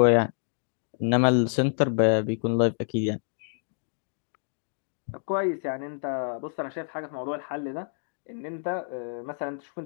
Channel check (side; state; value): right; silent; digital silence